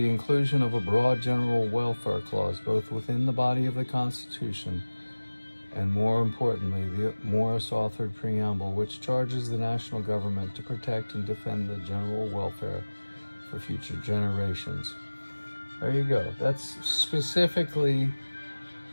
inclusion of a broad general welfare clause, both within the body of the Constitution and, more importantly, the Morris-authored preamble, which charges the national government to protect and defend the general welfare for future generations. There you go. That's specifically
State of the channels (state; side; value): inverted; both; correlation -1.00